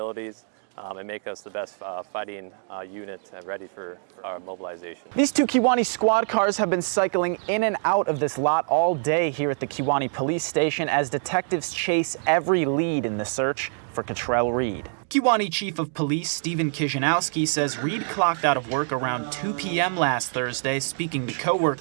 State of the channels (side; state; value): left; silent; 62 dB below the other